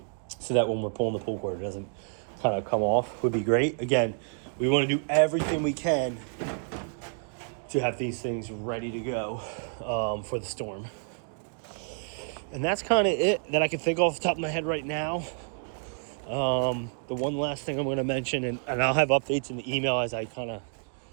so that when we're pulling the pull cord, it doesn't kind of come off, would be great. Again, we want to do everything we can to have these things ready to go for the storm. And that's kind of it that I can think off the top of my head right now. The one last thing I'm going to mention, and I'll have updates in the email as I kind of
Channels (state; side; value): silent; left; 58 dB below the other